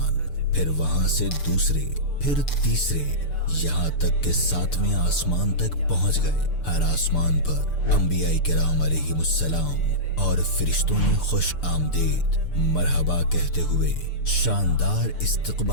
پھر وہاں سے دوسرے، پھر تیسرے، یہاں تک کہ 7ویں آسمان تک پہنچ گئے۔ ہر آسمان پر انبیاء کرام علیہم السلام اور فرشتوں نے خوش آمدید مرحبا کہتے ہوئے شاندار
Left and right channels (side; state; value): right; late; 6.8 ms